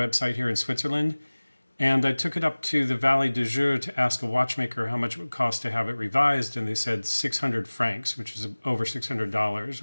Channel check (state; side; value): inverted; both; correlation -1.00